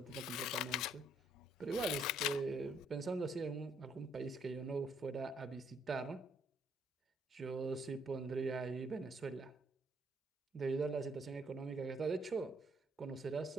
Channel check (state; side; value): normal; both; correlation 0.69